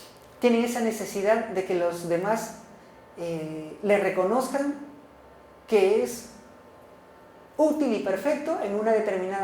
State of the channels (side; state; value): both; identical; correlation 1.00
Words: Tienen esa necesidad de que los demás le reconozcan que es útil y perfecto en una